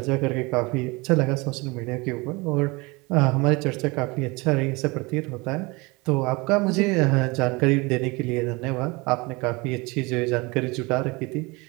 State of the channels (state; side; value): quieter; left; 25.5 dB